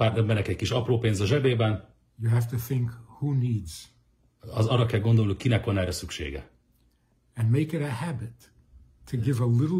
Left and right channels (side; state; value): both; identical; correlation 1.00